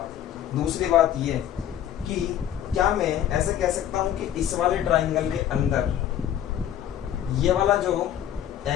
दूसरी बात ये कि क्या मैं ऐसे कह सकता हूँ कि इस वाले ट्राइंगल के अंदर ये वाला जो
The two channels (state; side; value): quieter; right; 10.7 dB